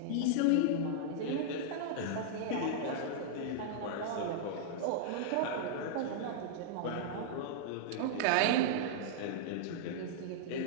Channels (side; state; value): both; different; correlation -0.02